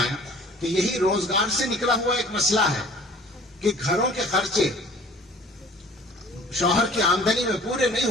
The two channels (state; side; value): normal; both; correlation 0.49